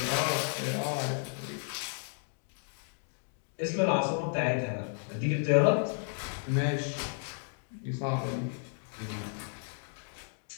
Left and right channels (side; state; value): right; silent; 56 dB below the other